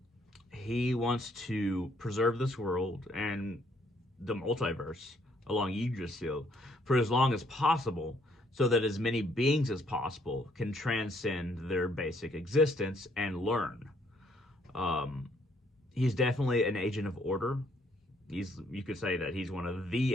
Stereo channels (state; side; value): normal; both; correlation 0.68